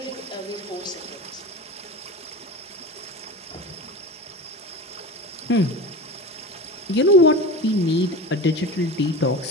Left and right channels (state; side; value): normal; both; correlation 0.30